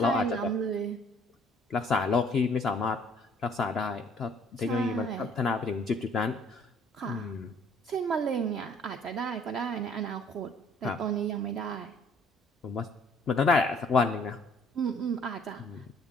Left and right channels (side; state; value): both; normal; correlation 0.58